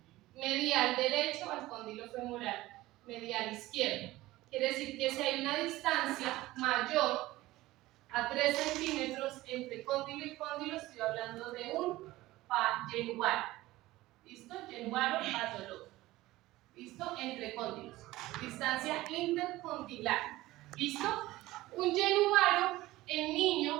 medial derecho al cóndilo femoral medial izquierdo. Quiere decir que si hay una distancia mayor a 3 centímetros entre cóndilo y cóndilo, estoy hablando de un yenuaro. ¿Listo? Yenuaro patológico. ¿Listo? Entre cóndilos. Distancia intercondilar. ¿Listo? Un yenuaro en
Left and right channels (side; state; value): left; quieter; 17.7 dB